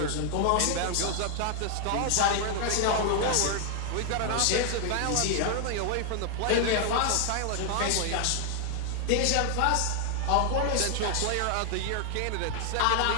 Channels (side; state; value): both; different; correlation 0.00